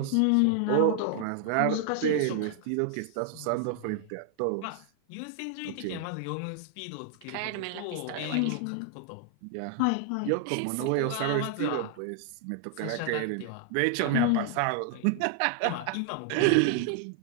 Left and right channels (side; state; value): both; different; correlation 0.00